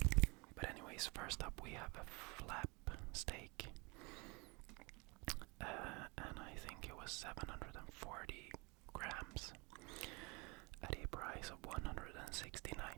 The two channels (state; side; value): quieter; left; 28.2 dB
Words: But anyways, first up we have a flap steak, and I think it was 740 grams at a price of